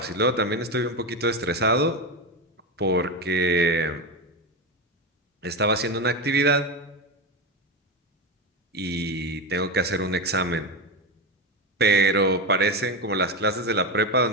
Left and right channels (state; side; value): normal; both; correlation 0.15